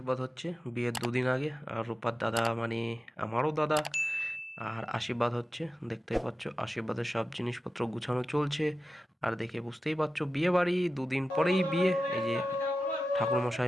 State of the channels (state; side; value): normal; both; correlation 0.93